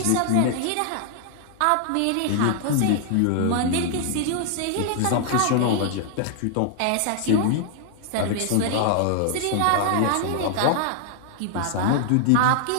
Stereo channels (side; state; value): both; different; correlation 0.00